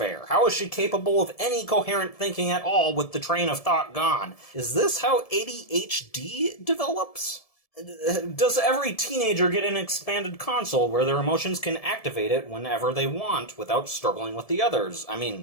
How is she capable of any coherent thinking at all with the train of thought gone? Is this how ADHD develops? Does every teenager get an expanded console where their emotions can activate it whenever they want without struggling with the others? I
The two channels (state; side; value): late; right; 1.7 ms